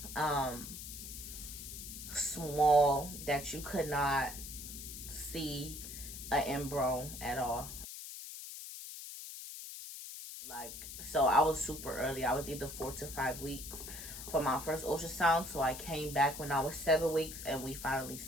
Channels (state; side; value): noise; left; hiss, 10 dB below the sound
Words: small that you could not see an embryo at all. Like, so I was super early. I was either 4 to 5 weeks for my first ultrasound. So I came back when I was 7 weeks and we finally